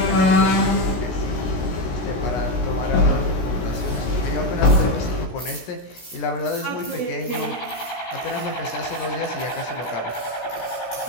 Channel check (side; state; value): right; late; 16 ms